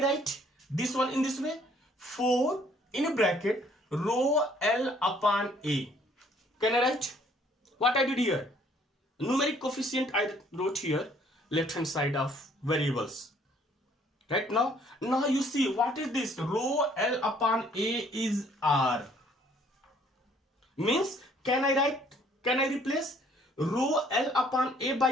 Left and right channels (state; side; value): normal; both; correlation 0.61